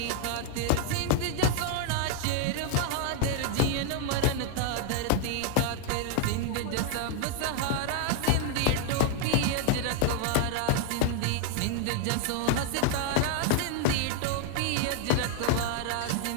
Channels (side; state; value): both; different; correlation 0.00